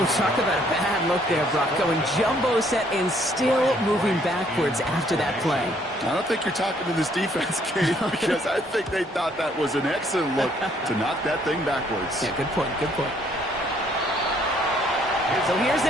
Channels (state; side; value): normal; both; correlation 0.65